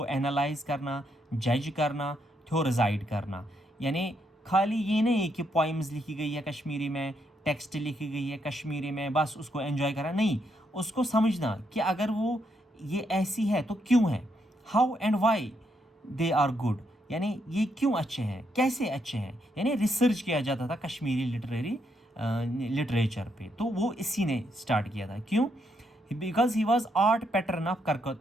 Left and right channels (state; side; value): normal; both; correlation 0.77